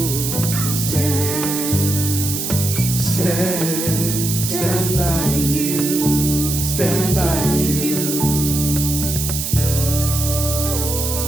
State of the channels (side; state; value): right; noise; hiss, 3 dB below the sound